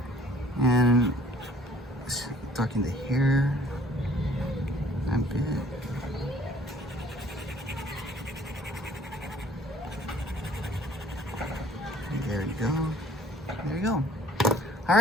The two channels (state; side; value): normal; both; correlation 0.55